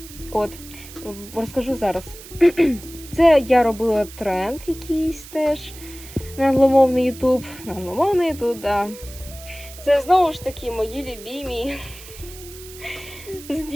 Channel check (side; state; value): right; noise; hiss, 17 dB below the sound